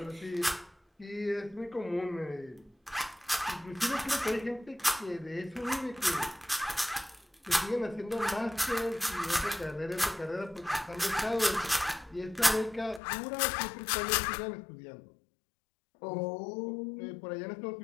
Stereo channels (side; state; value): right; drops out; at 13.0 s